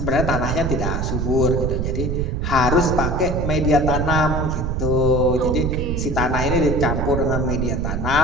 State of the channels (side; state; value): right; noise; rumble, 1 dB below the sound